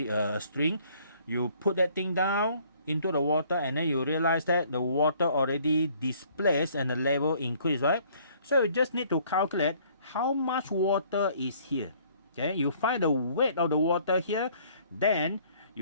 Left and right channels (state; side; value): inverted; both; correlation -0.59